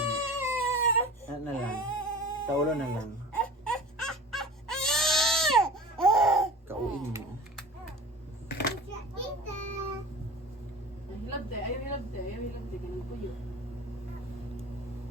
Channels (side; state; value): both; normal; correlation 0.38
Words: Na lang. Sa ulo na lang. Kauin mo. Hilabte, ayaw hilabte. Ganun po yun.